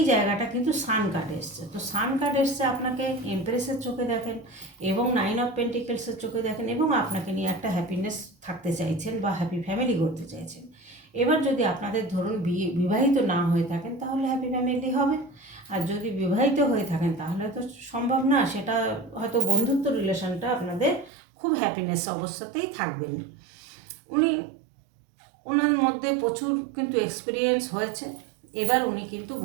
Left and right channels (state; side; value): drops out; left; at 21.1 s